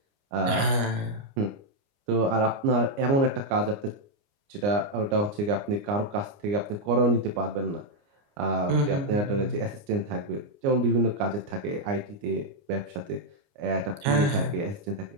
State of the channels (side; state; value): left; late; 29 ms